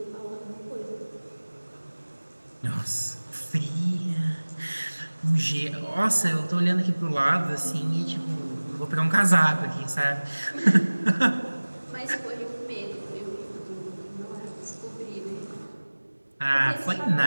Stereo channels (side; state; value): both; inverted; correlation -1.00